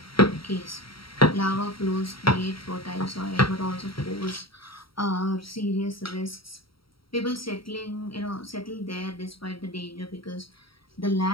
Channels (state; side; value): late; right; 0.75 ms